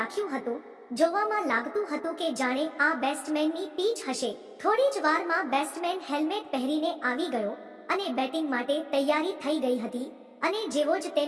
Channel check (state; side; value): identical; both; correlation 1.00